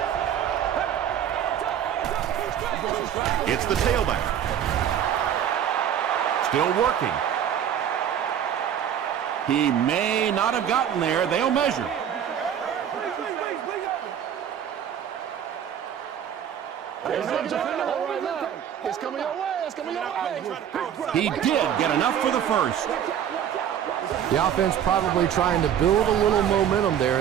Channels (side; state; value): left; quieter; 9.4 dB